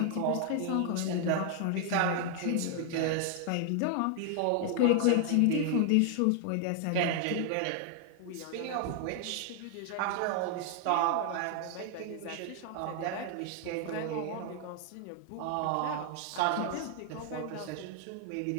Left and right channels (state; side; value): different; both; correlation 0.00